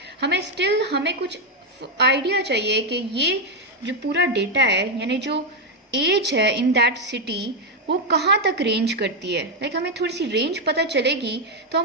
हमें कुछ आइडिया चाहिए कि ये जो पूरा डेटा है यानी जो एज है इन दैट सिटी वो कहाँ तक रेंज करती है। लाइक हमें थोड़ी सी रेंज पता चलेगी तो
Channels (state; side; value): normal; both; correlation 0.04